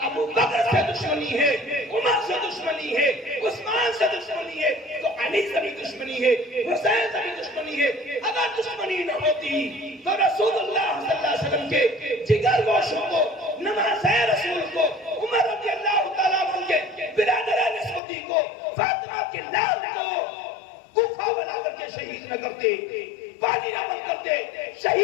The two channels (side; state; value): right; drops out; at 18.0 s